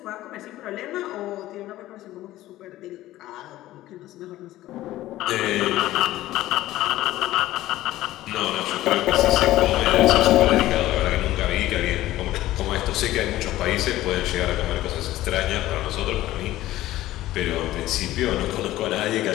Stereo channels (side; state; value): right; quieter; 15.4 dB